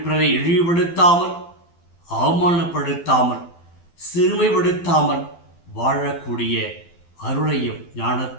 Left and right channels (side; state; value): right; late; 12 ms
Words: பிறரை இழிவுபடுத்தாமல், அவமானப்படுத்தாமல், சிறுமைப்படுத்தாமல் வாழக்கூடிய அருளையும்